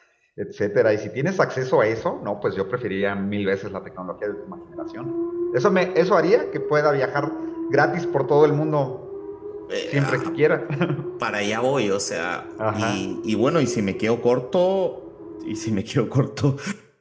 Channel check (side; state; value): both; identical; correlation 1.00